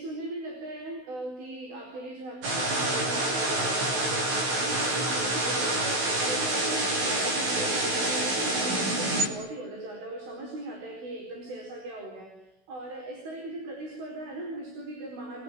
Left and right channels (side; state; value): left; late; 16 ms